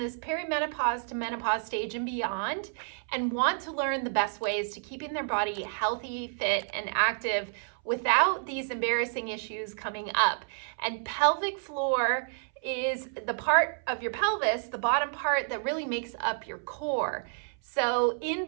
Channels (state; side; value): silent; left; 58 dB below the other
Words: perimenopause to menopause stage and beyond, and want to learn the best ways to keeping their body healthy, fit, and active without these embarrassing issues coming up. And pelvic floor is the part of your pelvis, the bottom part that really makes up your core. So in